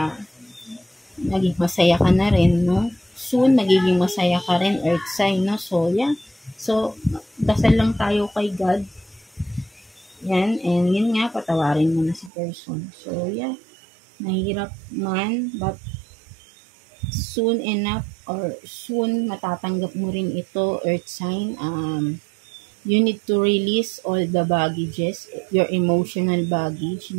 naging masaya ka na rin, no? Soon, magiging masaya ka rin, earth sign, no? So, yeah. So, dasal lang tayo kay God. Yan, and yun nga, patawarin mo na si person. So, yeah. Mahirap man, but soon enough, or soon matatanggap mo rin ito, earth sign. You need to release all the baggages, your emotional baggage,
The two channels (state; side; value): drops out; left; at 12.3 s